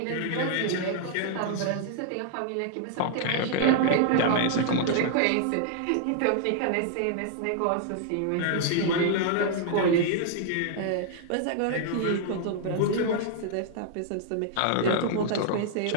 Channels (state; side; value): different; both; correlation -0.01